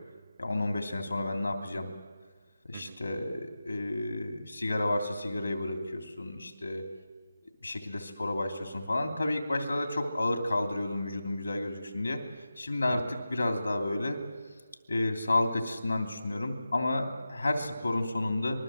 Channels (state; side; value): inverted; both; correlation -0.93